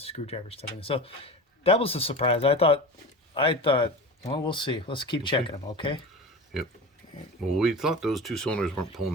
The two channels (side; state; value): both; normal; correlation 0.31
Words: screwdriver stuff in it. So that was a surprise. I thought, well, we'll see. Let's keep checking them, okay? Yep. Well, we thought those 2 cylinders weren't